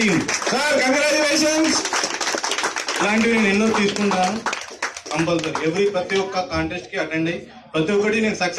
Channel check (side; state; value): both; identical; correlation 1.00